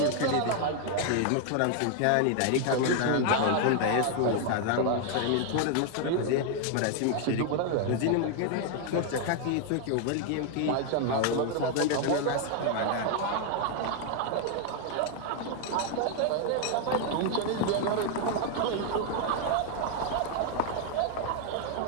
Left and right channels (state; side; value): different; both; correlation 0.00